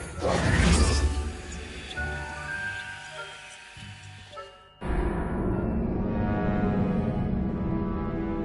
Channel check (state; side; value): identical; both; correlation 1.00